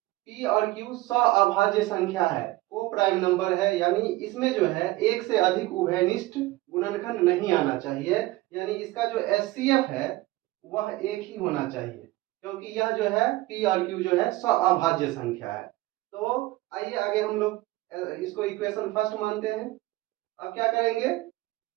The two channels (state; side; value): quieter; left; 18.9 dB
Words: p और q अभाज्य संख्या है, को प्राइम नंबर है, यानी इसमें जो है एक से अधिक उभयनिष्ठ गुणनखंड नहीं आना चाहिए। यानी इसका जो एचसीएफ है वह एक ही होना चाहिए, क्योंकि यह जो है p और q जो है अभाज्य संख्या है। तो आइए आगे हम लोग इसको इक्वेशन फर्स्ट मानते हैं। अब क्या करेंगे,